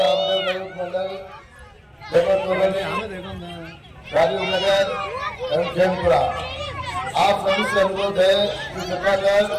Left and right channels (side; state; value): both; identical; correlation 1.00